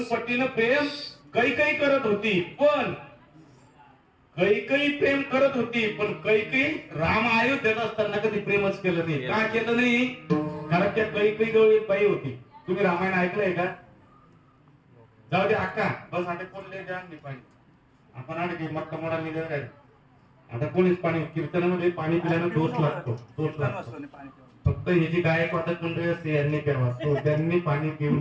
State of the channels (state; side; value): identical; both; correlation 1.00